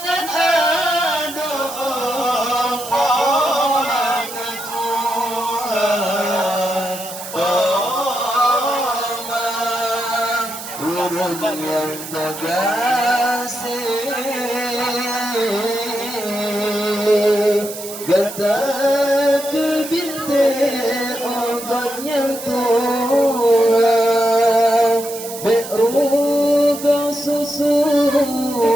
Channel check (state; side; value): noise; right; hiss, 11 dB below the sound